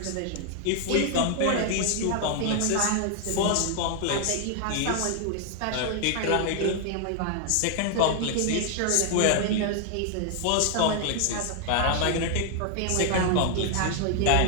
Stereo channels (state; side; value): different; both; correlation 0.00